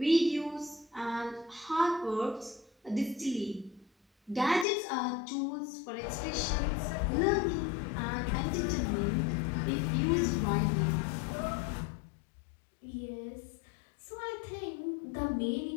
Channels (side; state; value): right; drops out; at 4.7 s